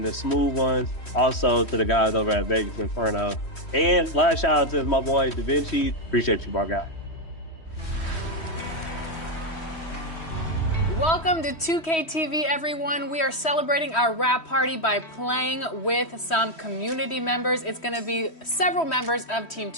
the smooth ones, also to the guys over at Vegas Inferno. And last shout out to my boy Da Vinci. Appreciate you, my guy. Welcome to 2K TV, everyone. We are celebrating our wrap party by playing with some community members. It's going to be several members of Team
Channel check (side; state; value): right; late; 3.1 ms